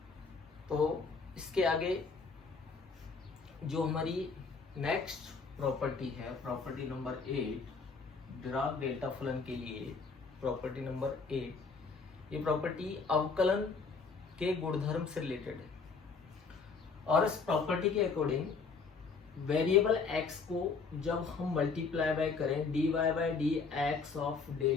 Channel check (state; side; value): quieter; right; 4.8 dB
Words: तो इसके आगे जो हमारी नेक्स्ट प्रॉपर्टी है, प्रॉपर्टी नंबर 8, डिराक डेल्टा फलन के लिए प्रॉपर्टी नंबर 8, ये प्रॉपर्टी अवकलन के गुणधर्म से रिलेटेड है। और इस प्रॉपर्टी के अकॉर्डिंग वेरिएबल x को जब हम मल्टीप्लाई बाय करें dy by d x of